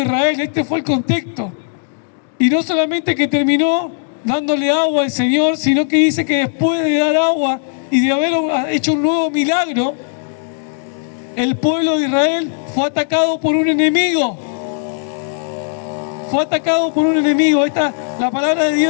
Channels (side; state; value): right; silent; digital silence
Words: Israel, este fue el contexto. Y no solamente que terminó dándole agua al Señor, sino que dice que después de dar agua y de haber hecho un nuevo milagro, el pueblo de Israel fue atacado por un enemigo. Fue atacado por un enemigo. La palabra de